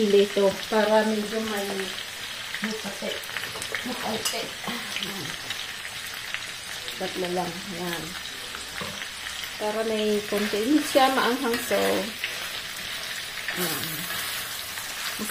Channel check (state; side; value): identical; both; correlation 1.00